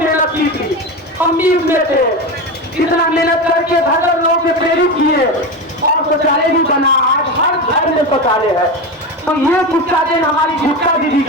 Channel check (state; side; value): normal; both; correlation 0.20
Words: की थी, हम भी उसमें थे। इतना मेहनत करके घर लोगों से प्रेरित किए और शौचालय भी बना। आज हर घर में शौचालय है। तो ये गुस्सा देन हमारी गुप्ता दीदी